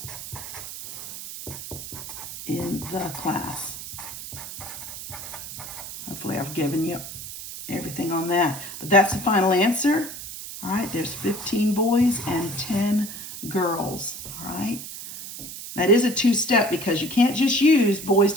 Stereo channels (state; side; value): noise; right; hiss, 10 dB below the sound